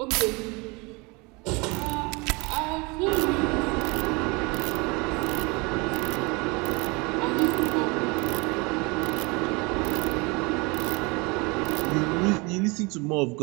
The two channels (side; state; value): left; quieter; 27.7 dB